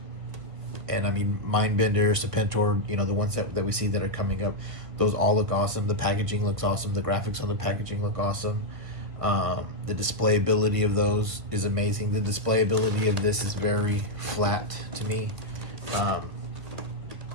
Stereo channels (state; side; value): late; left; 1.5 ms